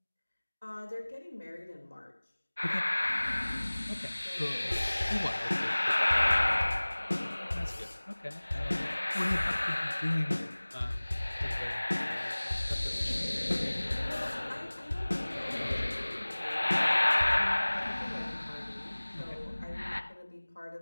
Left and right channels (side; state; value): both; inverted; correlation -1.00